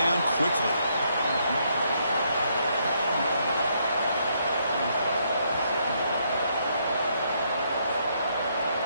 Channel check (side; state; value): both; inverted; correlation -0.73